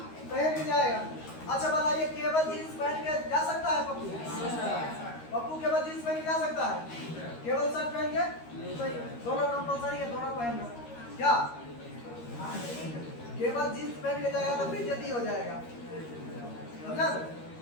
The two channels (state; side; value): late; right; 13 ms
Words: पहन के जाएगा। अच्छा बताइए, केवल जीन्स पहन के जा सकता है पप्पू? पप्पू केवल जीन्स पहन के जा सकता है? केवल शर्ट पहन के? दोनों कंपलसरी है, दोनों पहनना, क्या। केवल जीन्स पहन के जाएगा तो बेइज्जती हो जाएगा, समझा।